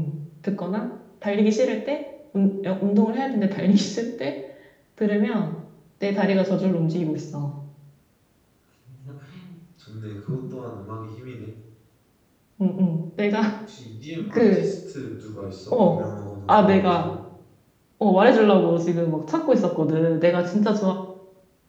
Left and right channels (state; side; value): identical; both; correlation 1.00